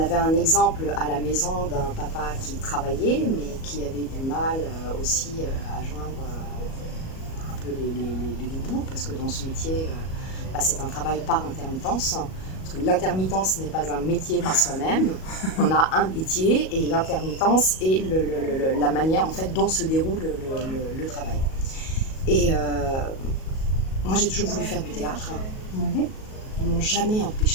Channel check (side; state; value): right; late; 37 ms